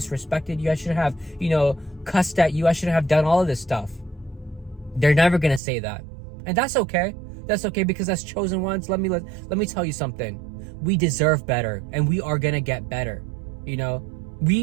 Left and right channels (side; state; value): left; drops out; at 5.6 s